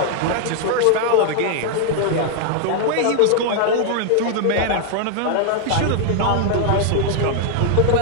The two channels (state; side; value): different; both; correlation -0.01